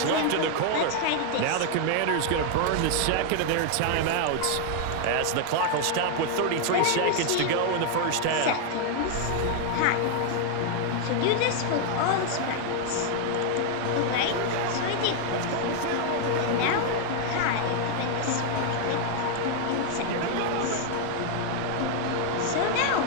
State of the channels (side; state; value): both; different; correlation 0.00